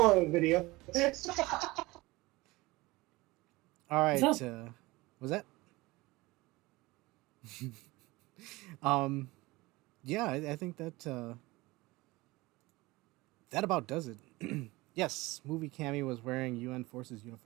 video. All right. What's Was that? Yeah, I think that that about does it. Yes, movie Cammy was wearing UN Forces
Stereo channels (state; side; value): quieter; left; 21.2 dB